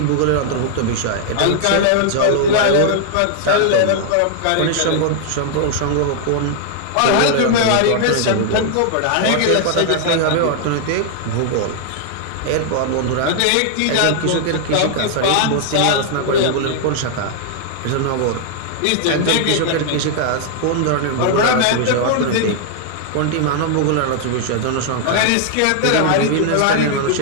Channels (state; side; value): different; both; correlation 0.00